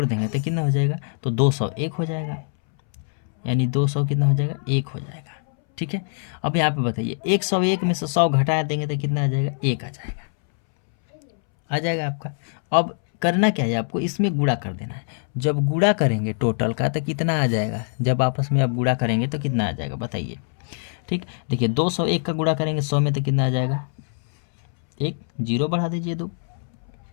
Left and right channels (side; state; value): right; silent; 63 dB below the other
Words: देंगे तो कितना हो जाएगा, तो 201 हो जाएगा, यानी 200 कितना हो जाएगा, 1 हो जाएगा। ठीक है, अब यहाँ पे बताइए 101 में से 100 घटा देंगे तो कितना आ जाएगा, 1 आ जाएगा आपका। अब करना क्या है आपको, इसमें गुणा कर देना है। जब गुणा करेंगे टोटल का तो कितना आ जाएगा, जब आपस में आप गुणा करेंगे तो कितना आ जाएगा बताइए। ठीक, देखिए 201 का गुणा करेंगे 100 में तो कितना आ जाएगा, 1 जीरो बढ़ा दीजिए 2।